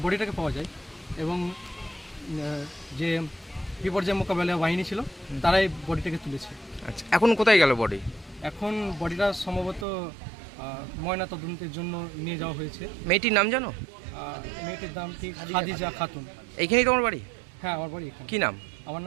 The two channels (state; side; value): drops out; left; at 9.9 s